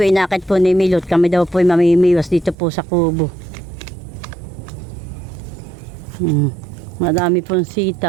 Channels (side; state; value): left; drops out; at 2.6 s